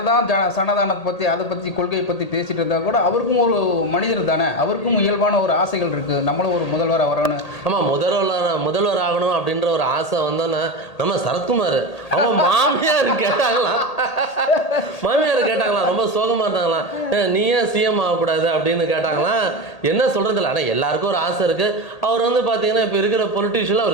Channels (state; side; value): late; right; 1.8 ms